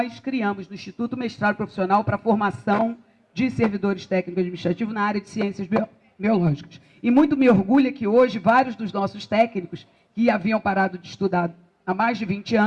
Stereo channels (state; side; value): identical; both; correlation 1.00